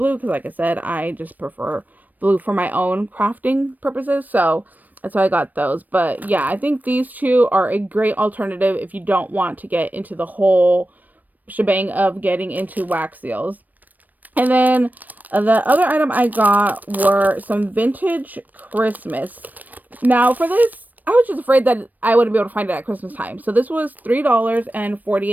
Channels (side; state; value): left; late; 0.084 ms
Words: because, like I said, I just prefer blue for my own crafting purposes. So that's why I got those. But yeah, I think these two are a great alternative if you don't want to get into the whole shebang of getting into wax seals. And then the other item I got were some vintage Christmas. Now for this, I was just afraid that I wouldn't be able to find it at Christmas time. So this was